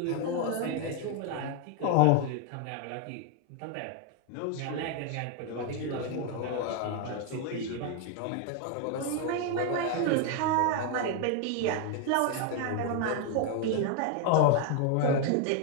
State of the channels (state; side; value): different; both; correlation 0.01